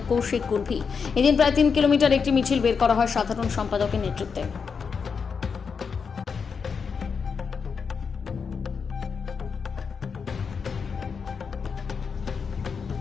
কৌশিক কুর্ভি। এদিন প্রায় 3 কিলোমিটার একটি মিছিল বের করা হয় সাধারণ সম্পাদকের নেতৃত্বে।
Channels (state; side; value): quieter; right; 5.8 dB